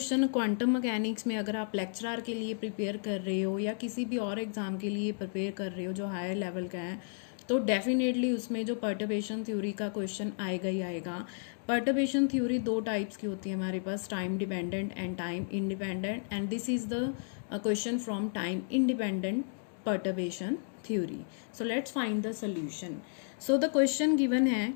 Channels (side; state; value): right; silent; digital silence